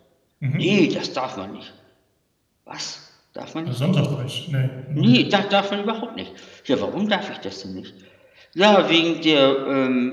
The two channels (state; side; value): identical; both; correlation 1.00